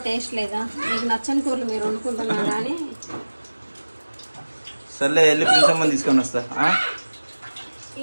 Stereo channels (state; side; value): inverted; both; correlation -1.00